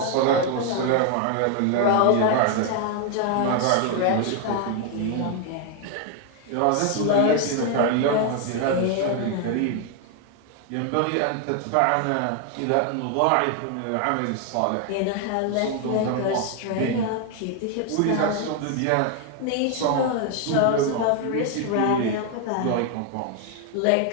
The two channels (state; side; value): different; both; correlation 0.00